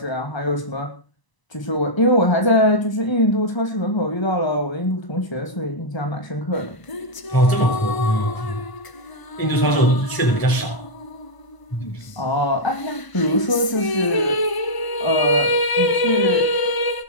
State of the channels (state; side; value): late; right; 1.0 ms